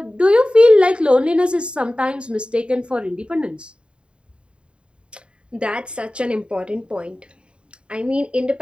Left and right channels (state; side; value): late; left; 0.054 ms